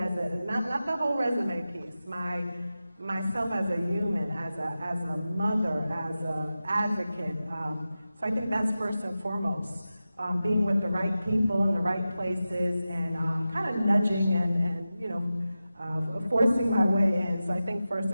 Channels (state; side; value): inverted; both; correlation -0.93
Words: not the whole resume piece, my myself as a human, as a mother, as an advocate. So I think that's first and foremost. Being with the right people in the right places and kind of nudging and you know, forcing my way in. So I think first